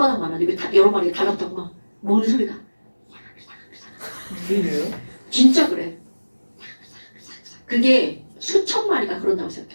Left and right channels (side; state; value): both; inverted; correlation -1.00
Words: 하고 다 여러 마리 달랐다고 막 먹는 소리가. 들려요? 진짜 그래. 그게 수천 마리가 그런다고